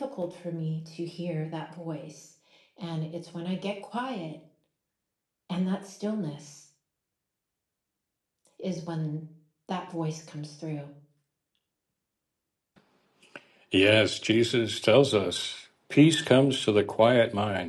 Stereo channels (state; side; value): identical; both; correlation 1.00